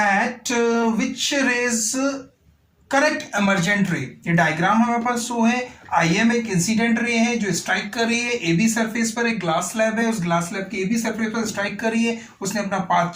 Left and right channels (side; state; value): both; identical; correlation 1.00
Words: which rays correct emergent ray। ये diagram हमारे पास show है। IM एक incident ray है जो स्ट्राइक कर रही है AB सरफेस पर। एक ग्लास स्लैब है, उस ग्लास स्लैब के AB सरफेस पर स्ट्राइक कर रही है। उसने अपना पाथ